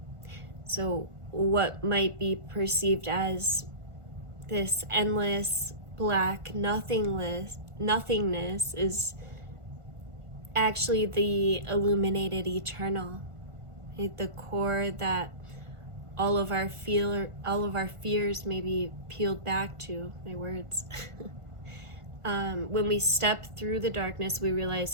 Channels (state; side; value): late; left; 1.5 ms